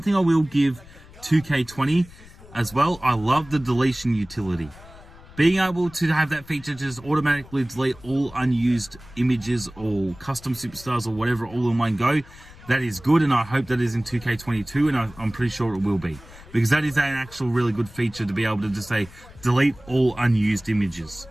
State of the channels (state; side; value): noise; left; rumble, 20 dB below the sound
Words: thing I will give 2K20 as well, I love the deletion utility. Being able to have that feature just automatically delete all unused images or custom superstars or whatever all in one go, that is good, and I hope that is in 2K22, and I'm pretty sure it will be. Because that is an actual really good feature to be able to just say, delete all unused images.